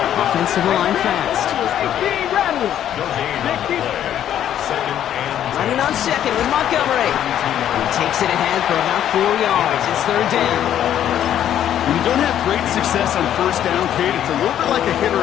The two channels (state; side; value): quieter; right; 10.7 dB